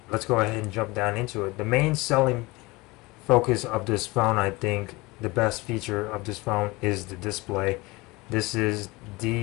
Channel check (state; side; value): quieter; right; 23.0 dB